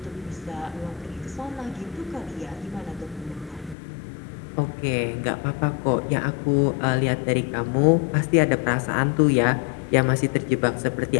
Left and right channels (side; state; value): right; drops out; at 3.8 s